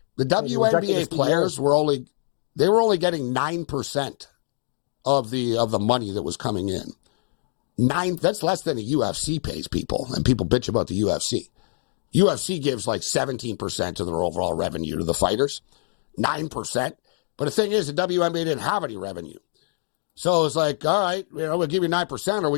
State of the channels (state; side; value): silent; right; digital silence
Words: The WNBA players were only getting 9% of the money that was coming in. 9. That's less than the UFC pays people, and people bitch about the UFC. UFC gives like 17% of their overall revenue to the fighters. 9%. But the thing is, the WNBA didn't have any revenue. So it's like, all right, we'll give you 9% or